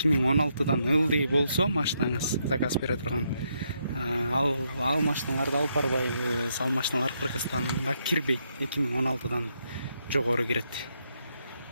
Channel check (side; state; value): both; inverted; correlation -0.78